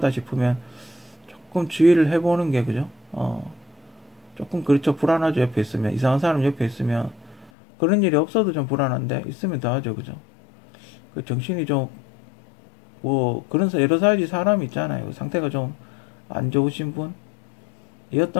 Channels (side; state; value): right; drops out; at 7.5 s